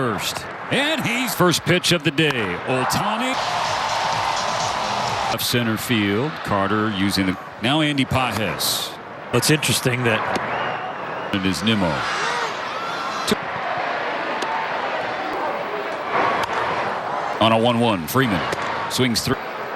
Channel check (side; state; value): both; identical; correlation 1.00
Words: And he's first pitch of the day. Ohtani. Left center field. Carter using the. Now Andy Pages. What's interesting that. It is Nimmo. On a 1-1. Freeman swings through.